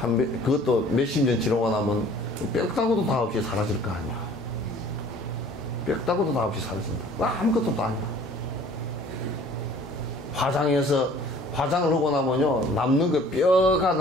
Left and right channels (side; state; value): both; normal; correlation 0.52